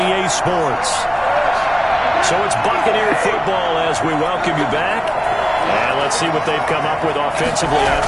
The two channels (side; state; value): both; identical; correlation 1.00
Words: Sports. So it's Buccaneer football as we welcome you back. And let's see what they've come up with offensively